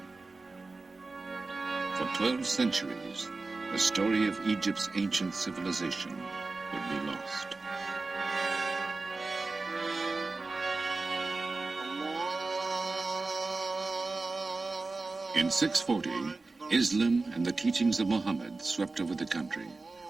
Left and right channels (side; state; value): left; quieter; 3.6 dB